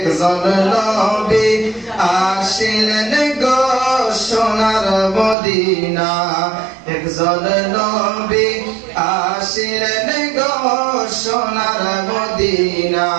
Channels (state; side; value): drops out; left; at 5.4 s